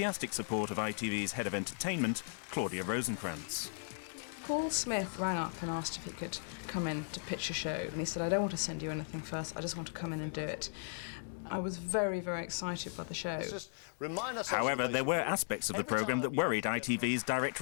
support of ITV's head of entertainment, Claudia Rosenkrantz. Paul Smith rang up and asked if he could come in to pitch a show, and he said, I don't want to send you anything first, I just want to come in and do it. I was very, very excited by the show. However, there were aspects of the programme that worried ITV's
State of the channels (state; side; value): silent; right; digital silence